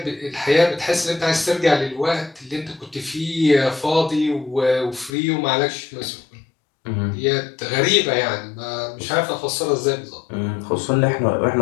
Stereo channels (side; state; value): right; drops out; at 5.1 s